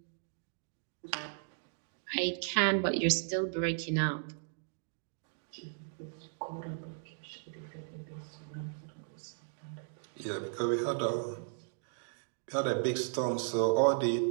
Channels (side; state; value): left; silent; digital silence